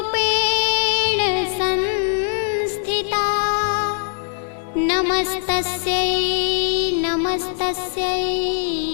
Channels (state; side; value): silent; right; digital silence